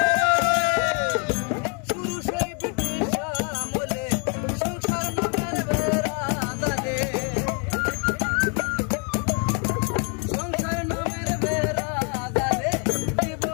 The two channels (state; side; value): quieter; right; 37.7 dB